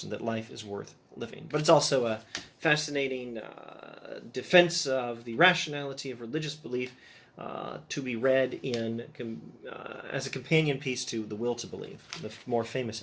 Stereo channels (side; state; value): both; identical; correlation 1.00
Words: that life is worth living. But it's also a fascinating defense of the rationality of religious belief, to be read in as a companion piece to The Will to Believe, the more famous